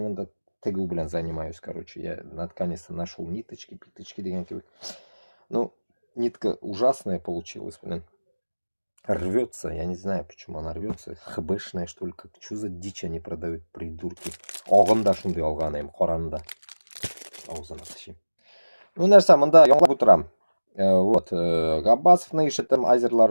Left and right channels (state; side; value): inverted; both; correlation -1.00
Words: мында тігу блин занимаюсь, короче. Я наконец-то нашел ниточки, питочки деген кебек. Ну, нитка ужасная получилась, блин. Рвется, я не знаю, почему она рвется. ХБшная, что ли, как, что за дичь они продают, придурки. Оғында шундай алған ем, қоранда. Аузына тышим. Ну, нәрсе, мында яңлап отырам. Вот, Габбасов наишетем азерлар,